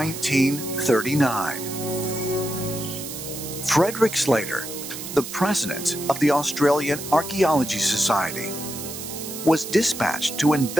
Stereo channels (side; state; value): right; noise; hiss, 9 dB below the sound